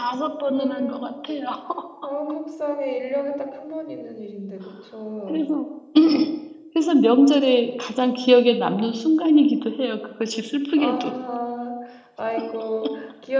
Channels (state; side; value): identical; both; correlation 1.00